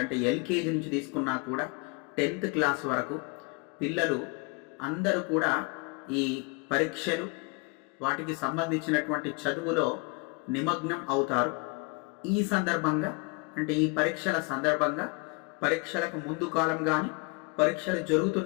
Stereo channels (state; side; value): quieter; right; 31.2 dB